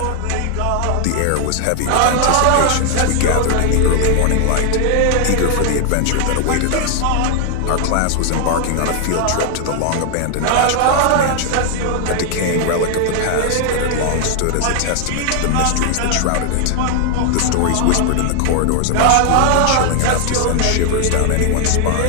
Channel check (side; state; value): both; different; correlation 0.00